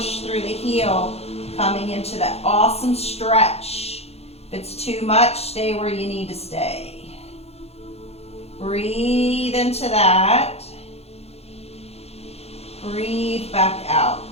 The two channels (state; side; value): late; right; 0.30 ms